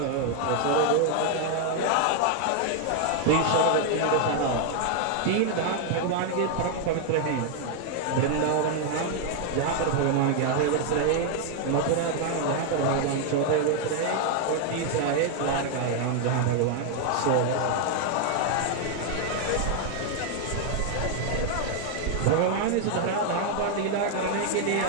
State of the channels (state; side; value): different; both; correlation 0.00